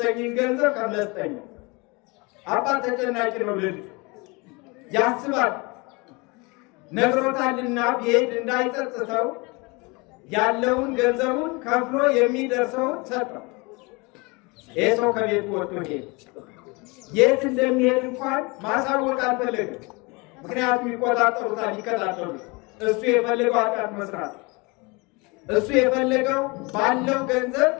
ገንዘብ ከፍለህ ስጠኝ። አባት ተጨናቂ ነው። ልጅ ያስባል፣ ነግሮታልና ቢሄድ እንዳይጸጽተው ያለውን ገንዘቡን ከፍሎ የሚደርሰውን ሰጠው። ይህ ሰው ከቤቱ ወጥቶ ሄደ። የት እንደሚሄድ እንኳን ማሳወቅ አልፈለገም። ምክንያቱም ይቆጣጠሩታል፣ ይከታተሉት። እሱ የፈለገው ኃጢአት መስራት፣ እሱ የፈለገው ባለው ገንዘብ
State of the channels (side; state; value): right; quieter; 27.2 dB